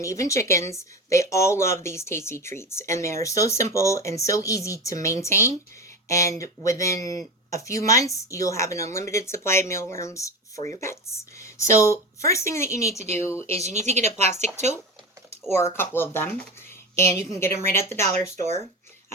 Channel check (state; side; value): normal; both; correlation 0.24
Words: even chickens, they all love these tasty treats. And they're so simple and so easy to maintain. And within a few months, you'll have an unlimited supply of mealworms for your pets. So first thing that you need to do is you need to get a plastic tote or a couple of them, and you can get them right at the dollar store.